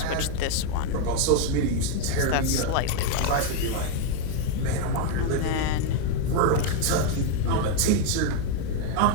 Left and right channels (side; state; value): both; different; correlation 0.01